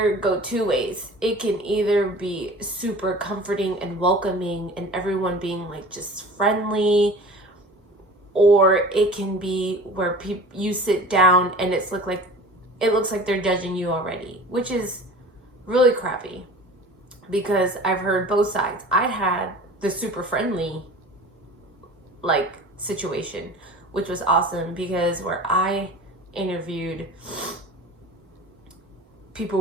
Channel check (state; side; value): normal; both; correlation 0.40